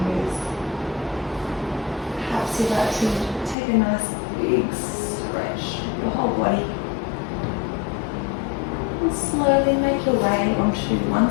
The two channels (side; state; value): right; drops out; at 3.6 s